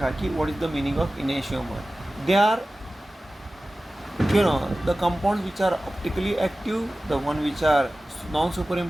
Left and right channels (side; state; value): both; normal; correlation 0.96